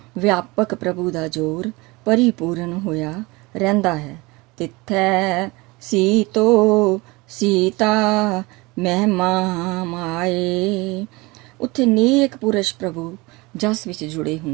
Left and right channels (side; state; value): left; quieter; 23.8 dB